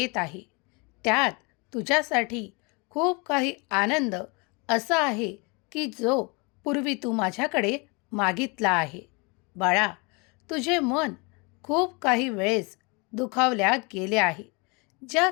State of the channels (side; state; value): right; quieter; 29.8 dB